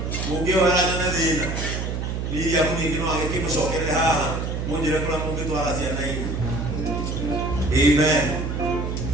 Mungu wala na thina. Ni ya Mungu ngino agikimsokere haha. Munjire kula Mungu twara ciana hivi. Amen.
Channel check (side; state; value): right; noise; hum, 3 dB below the sound